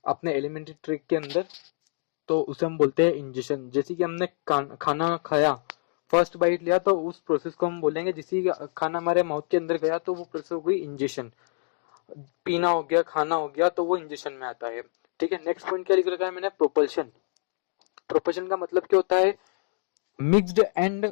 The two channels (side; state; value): right; silent; digital silence